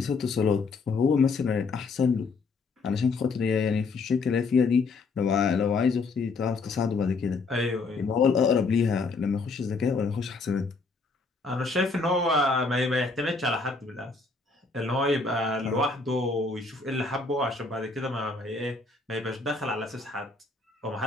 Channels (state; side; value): quieter; right; 4.0 dB